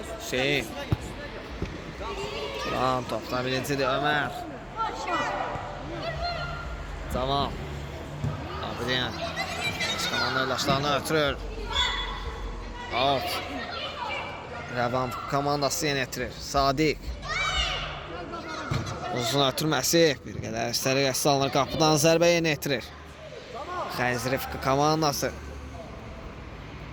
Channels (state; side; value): identical; both; correlation 1.00